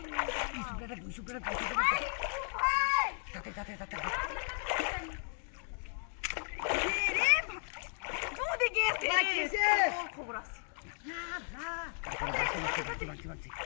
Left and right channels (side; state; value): right; silent; 54 dB below the other